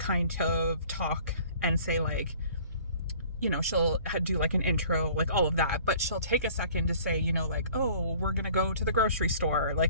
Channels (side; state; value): both; inverted; correlation -0.51